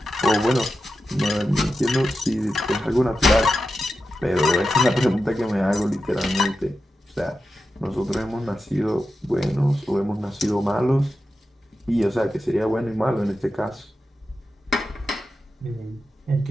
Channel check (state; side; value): normal; both; correlation 0.91